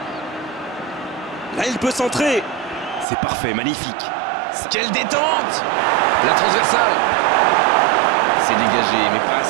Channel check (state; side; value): drops out; left; at 3.1 s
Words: Là, il peut centrer. C'est parfait, magnifique. Quelle détente! La transversale. C'est dégagé, mais pas